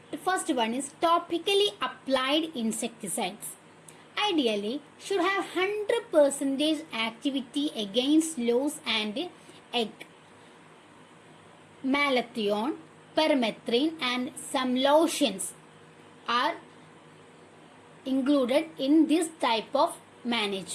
The first one is topically applied insecticides. Ideally should have 100% activity against louse and egg. Malathion, permethrin and some lotions are included in this type of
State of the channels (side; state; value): both; identical; correlation 1.00